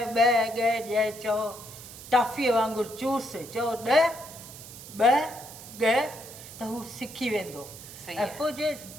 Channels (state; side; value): noise; right; hiss, 15 dB below the sound